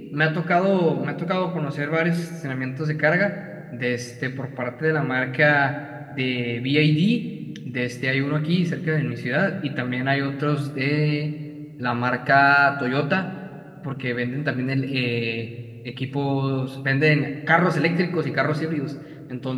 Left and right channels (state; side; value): identical; both; correlation 1.00